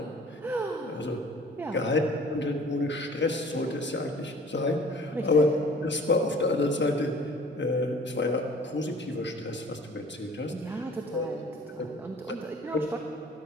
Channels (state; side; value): normal; both; correlation 0.49